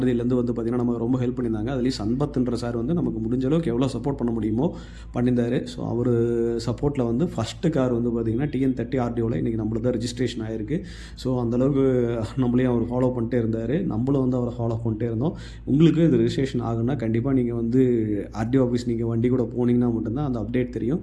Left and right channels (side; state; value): both; identical; correlation 1.00